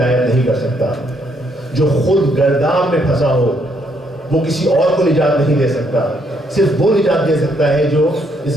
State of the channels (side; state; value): both; normal; correlation 0.72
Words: نہیں کر سکتا، جو خود گرداب میں پھنسا ہو وہ کسی اور کو نجات نہیں دے سکتا، صرف وہ نجات دے سکتا ہے جو اس